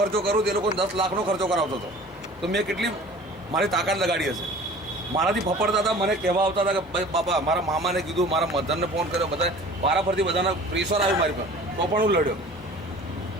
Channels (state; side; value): normal; both; correlation 0.45